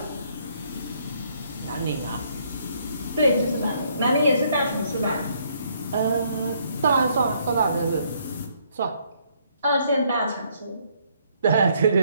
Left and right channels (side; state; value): both; inverted; correlation -0.68